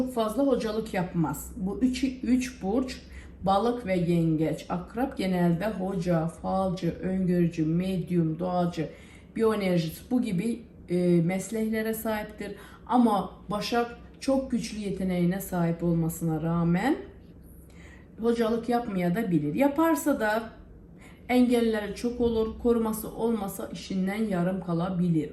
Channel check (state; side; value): identical; both; correlation 1.00